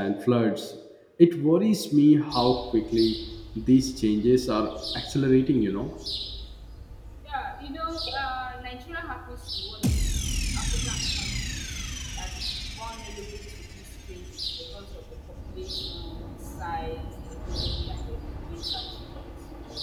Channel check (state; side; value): identical; both; correlation 1.00